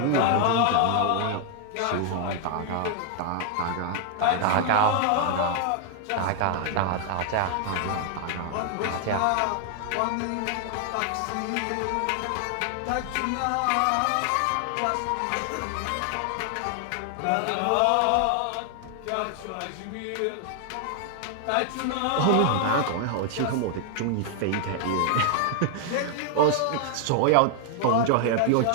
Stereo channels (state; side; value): different; both; correlation 0.00